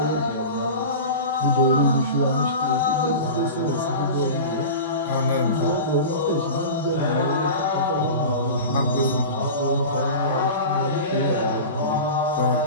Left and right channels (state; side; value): inverted; both; correlation -0.31